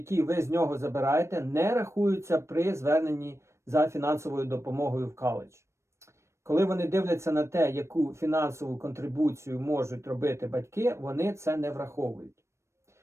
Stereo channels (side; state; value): left; late; 0.13 ms